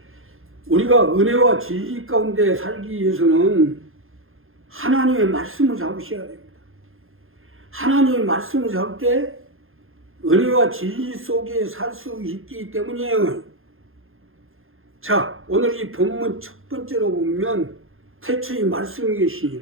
우리가 은혜와 진리 가운데 살기 위해서는 하나님의 말씀을 잡으셔야 됩니다. 하나님의 말씀을 잡을 때 은혜와 진리 속에 살 수 있기 때문이에요. 자, 오늘 이 본문 첫 번째로 보면 태초에 말씀이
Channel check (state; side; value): late; left; 0.60 ms